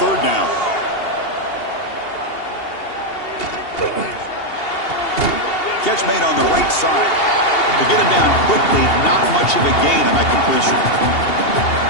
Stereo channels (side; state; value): right; late; 2.8 ms